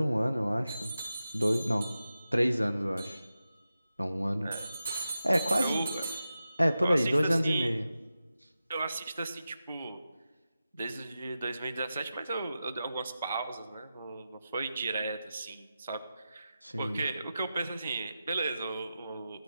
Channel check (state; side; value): inverted; both; correlation -0.92